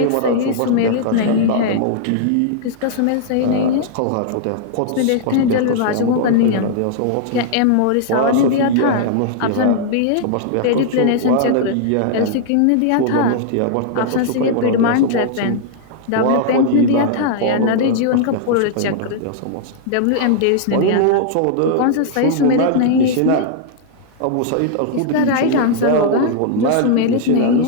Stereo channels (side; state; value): both; different; correlation -0.01